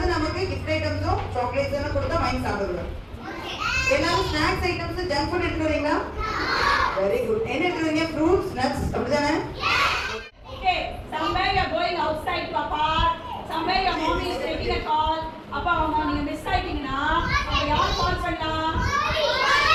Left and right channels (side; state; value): both; identical; correlation 1.00